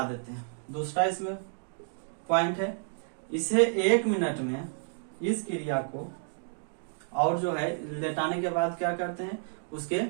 देते हैं। दूसरा इसमें पॉइंट है, इसे 1 मिनट में इस क्रिया को, और जो है लेटाने के बाद क्या करते हैं, उसके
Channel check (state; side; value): silent; left; digital silence